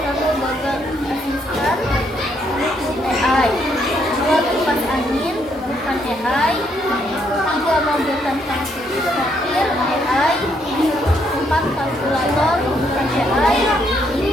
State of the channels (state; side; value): normal; both; correlation 0.73